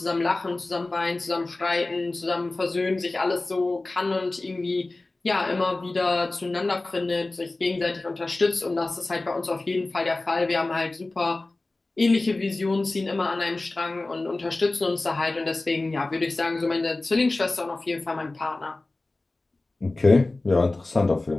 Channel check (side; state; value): right; quieter; 3.1 dB